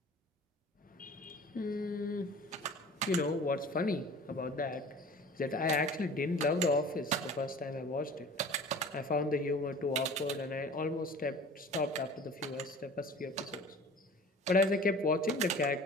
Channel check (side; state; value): both; normal; correlation 0.43